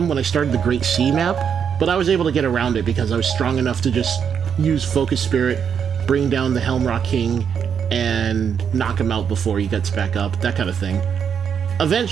when I started the Great Sea map, but I was able to get around it because I was strong enough to just use Focus Spirit, bring down the Helmrock King, and knock him out before he gets back up, that kind of thing.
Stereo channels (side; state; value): left; quieter; 7.5 dB